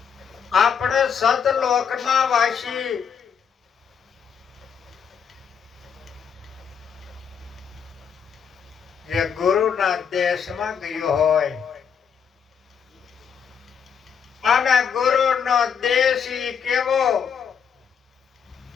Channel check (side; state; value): right; quieter; 7.2 dB